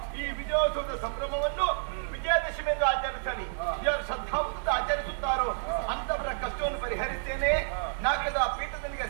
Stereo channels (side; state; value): left; silent; digital silence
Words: ಈ ವಿಜಯೋತ್ಸವದ ಸಂಭ್ರಮವನ್ನು ವಿಜಯದಶಮಿ ಎಂದು ಆಚರಿಸಲಿ. ಯಾರು ಶ್ರದ್ಧಾವಂತ ಆಚರಿಸುತ್ತಾರೋ ಅಂತವರ ಕಷ್ಟವನ್ನು ಪರಿಹರಿಸ್ತೇನೆ. ನಾಲ್ಕದ ಪೀಠದನಿಗೆ